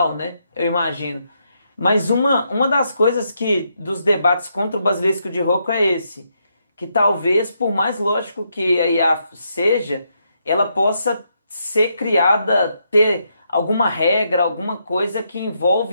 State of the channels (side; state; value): both; inverted; correlation -0.79